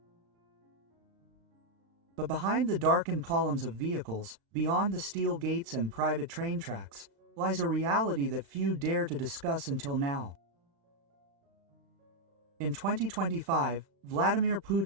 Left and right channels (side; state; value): left; late; 35 ms